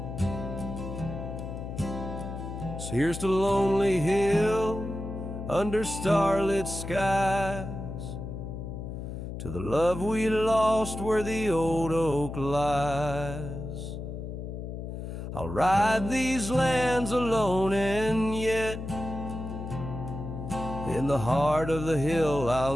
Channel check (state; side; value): noise; left; hum, 7 dB below the sound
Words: So here's to Lonely Hill under starlit skies, to the love we lost where the old oak lies. I'll ride these lands alone, and yet in the heart of the hill